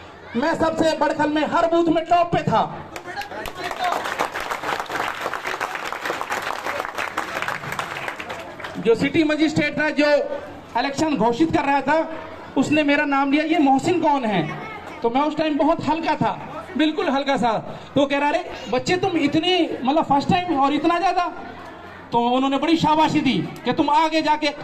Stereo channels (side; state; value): both; identical; correlation 1.00